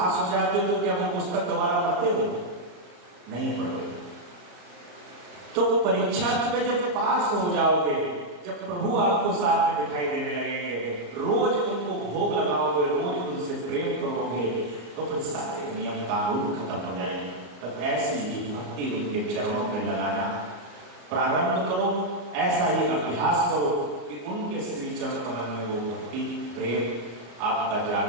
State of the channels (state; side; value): late; left; 34 ms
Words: हो जाते हो तो क्या वो पुस्तक दोबारा पढ़ते हो? नहीं पढ़ते। तो परीक्षा में जब पास हो जाओगे, जब प्रभु आपको साथ में दिखाई देने लगेंगे, रोज उनको भोग लगाओगे, रोज उनसे प्रेम करोगे, तो फिर सारे नियम कानून खत्म हो जाएंगे। तो ऐसी ही भक्ति उनके चरणों में लगाना प्रारंभ करो, ऐसा ही अभ्यास करो कि उनके श्री चरण कमल में वो भक्ति प्रेम आपका